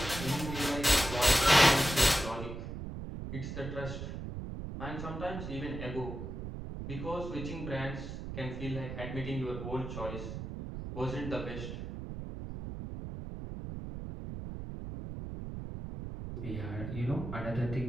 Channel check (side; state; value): right; noise; rumble, 7 dB below the sound